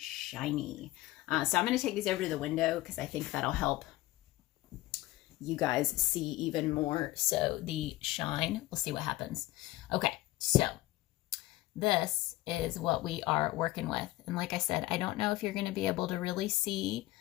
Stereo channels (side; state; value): right; quieter; 17.6 dB